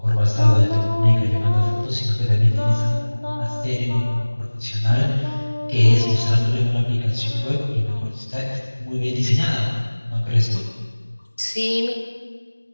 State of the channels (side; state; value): both; inverted; correlation -1.00